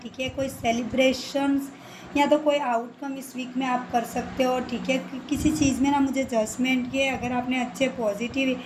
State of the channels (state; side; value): identical; both; correlation 1.00